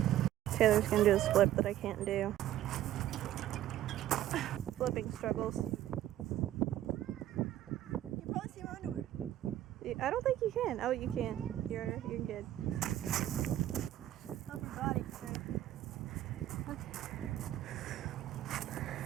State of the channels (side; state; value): left; quieter; 12.8 dB